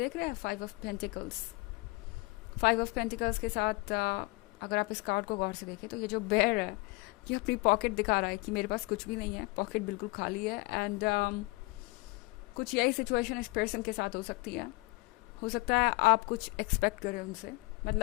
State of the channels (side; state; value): right; quieter; 24.8 dB